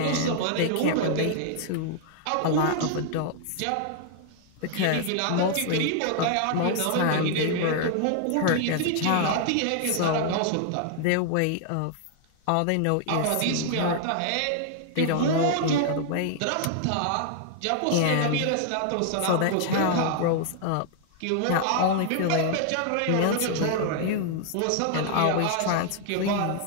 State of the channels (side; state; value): both; different; correlation 0.00